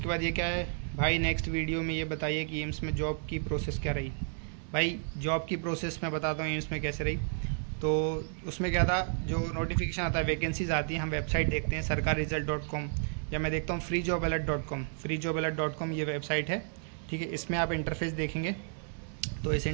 बाद ये क्या है भाई, नेक्स्ट वीडियो में ये बताइए कि एम्स में जॉब की प्रोसेस क्या रही। भाई जॉब की प्रोसेस मैं बताता हूँ एम्स में कैसे रही। तो उसमें क्या था, जो नोटिफिकेशन आता है, वैकेंसीज आती हैं, हम वेबसाइट देखते हैं sarkarresult.com, या मैं देखता हूँ freejobalert.com, ये वेबसाइट है, ठीक है। इसमें आप इंटरफेस देखेंगे तो इस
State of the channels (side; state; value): left; silent; 57 dB below the other